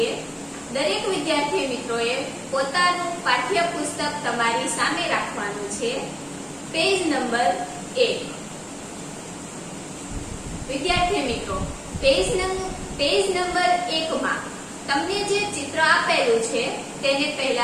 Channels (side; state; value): both; identical; correlation 1.00